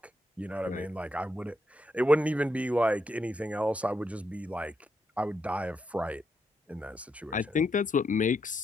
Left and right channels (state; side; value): normal; both; correlation 0.81